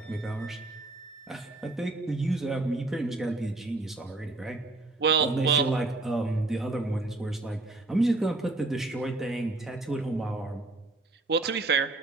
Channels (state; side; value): quieter; left; 3.1 dB